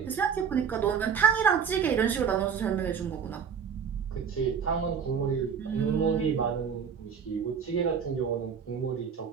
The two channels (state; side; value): quieter; left; 6.9 dB